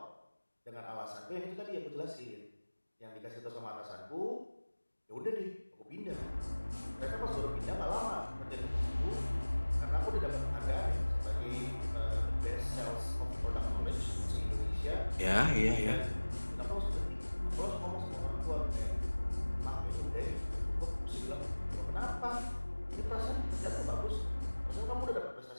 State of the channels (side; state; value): both; inverted; correlation -1.00